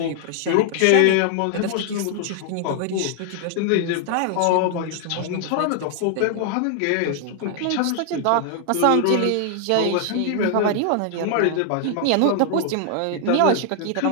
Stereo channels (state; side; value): different; both; correlation 0.00